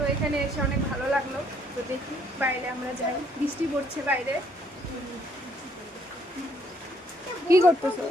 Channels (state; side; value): normal; both; correlation 0.67